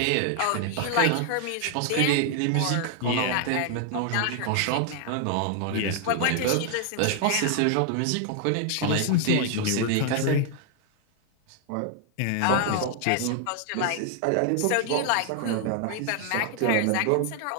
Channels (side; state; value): both; different; correlation 0.00